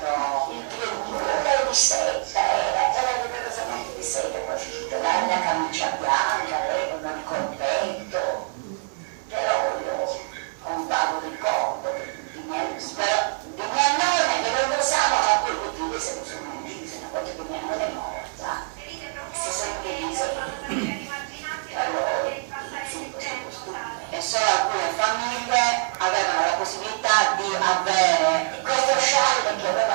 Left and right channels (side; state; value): left; silent; 62 dB below the other